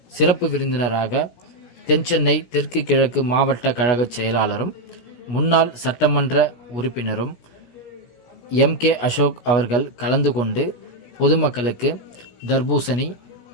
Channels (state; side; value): late; right; 17 ms